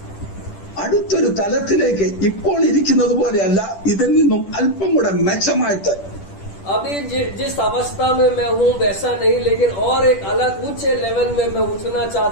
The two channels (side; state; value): right; late; 10 ms